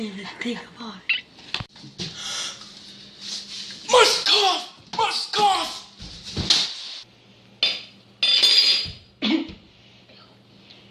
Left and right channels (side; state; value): both; identical; correlation 1.00